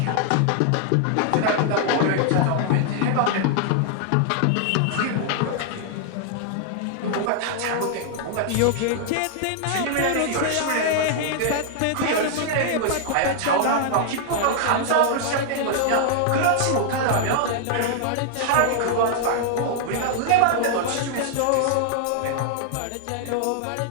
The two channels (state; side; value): different; both; correlation 0.00